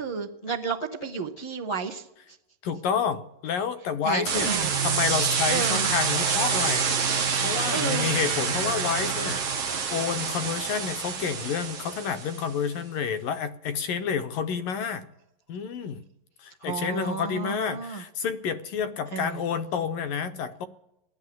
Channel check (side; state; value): right; late; 11 ms